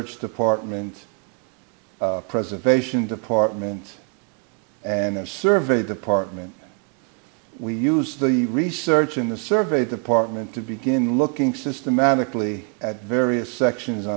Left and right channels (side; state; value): left; quieter; 38.6 dB